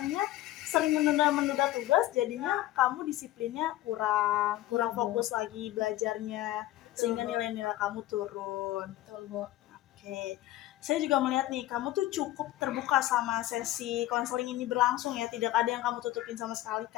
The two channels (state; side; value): quieter; right; 15.3 dB